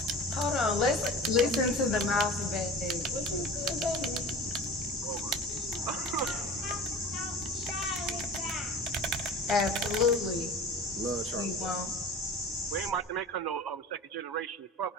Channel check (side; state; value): both; normal; correlation 0.37